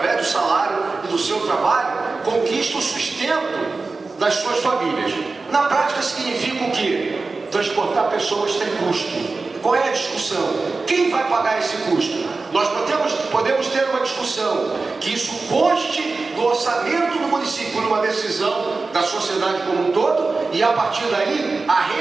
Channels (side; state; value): left; quieter; 3.9 dB